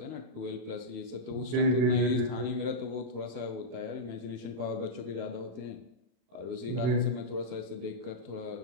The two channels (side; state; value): left; late; 32 ms